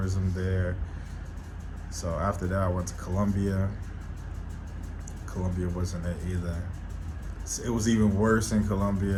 there. So after that, I went to Colombia. Colombia wasn't it either. It was even worse in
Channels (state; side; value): identical; both; correlation 1.00